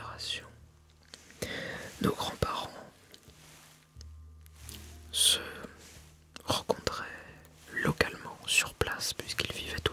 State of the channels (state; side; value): identical; both; correlation 1.00